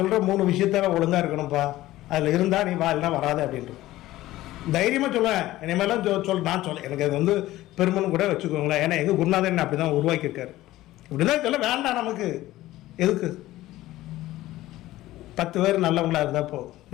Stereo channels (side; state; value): right; quieter; 16.1 dB